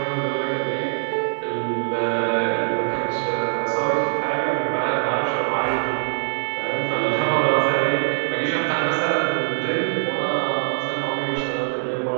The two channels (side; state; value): left; silent; 64 dB below the other